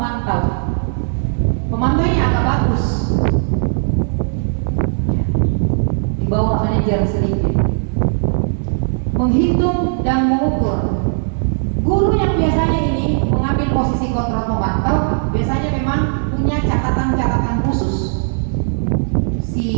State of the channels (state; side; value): silent; left; 64 dB below the other